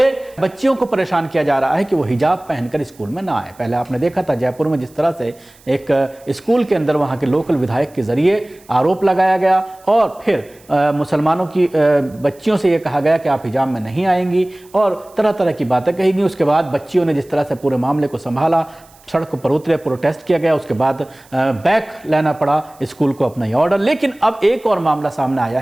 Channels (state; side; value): noise; right; hiss, 28 dB below the sound